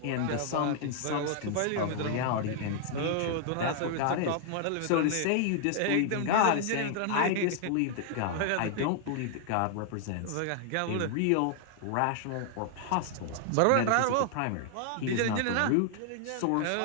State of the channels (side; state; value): both; different; correlation 0.00